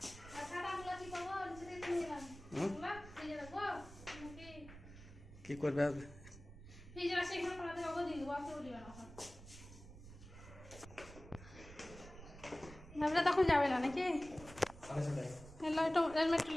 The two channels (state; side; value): noise; right; rumble, 16 dB below the sound